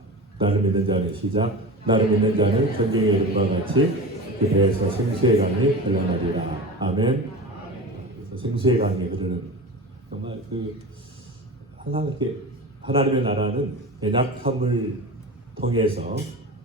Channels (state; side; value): normal; both; correlation 0.30